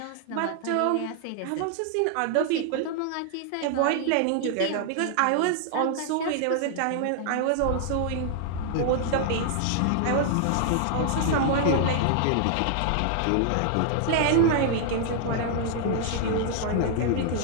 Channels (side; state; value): both; different; correlation 0.00